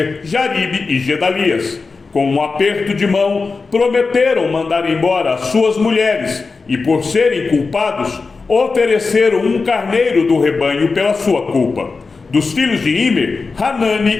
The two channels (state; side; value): quieter; right; 4.3 dB